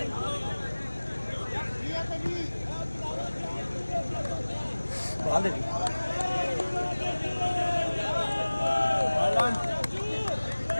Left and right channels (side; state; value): both; inverted; correlation -1.00